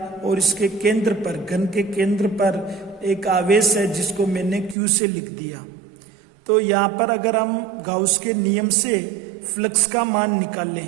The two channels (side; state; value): left; drops out; at 4.8 s